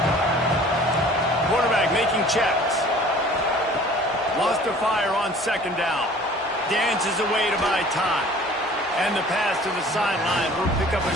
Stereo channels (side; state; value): both; normal; correlation 0.49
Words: Quarterback making checks. Lost to fire on second down. Dances away to buy time. And the pass to the sideline will pick up a